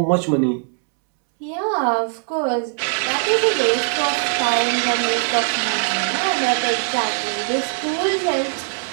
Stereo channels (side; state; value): left; silent; 65 dB below the other